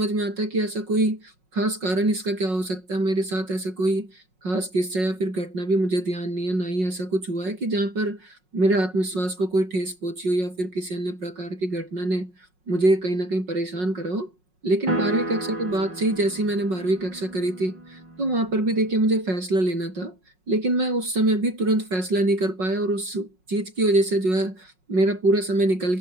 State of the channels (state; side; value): late; left; 5.5 ms